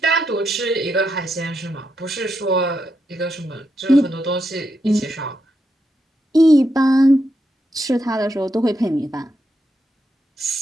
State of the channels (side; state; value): both; normal; correlation 0.83